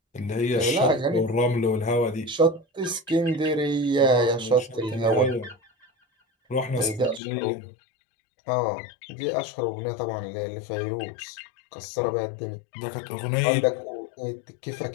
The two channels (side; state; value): right; drops out; at 7.2 s